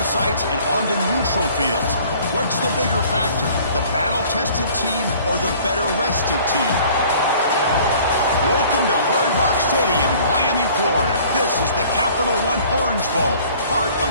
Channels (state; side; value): inverted; both; correlation -0.52